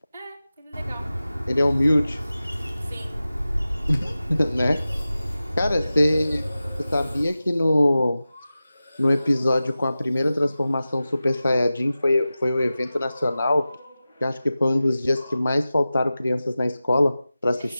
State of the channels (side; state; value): both; inverted; correlation -0.95